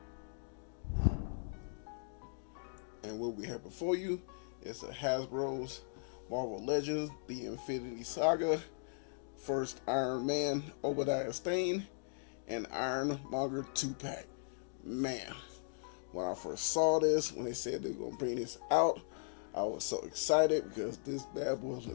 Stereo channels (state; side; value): silent; right; digital silence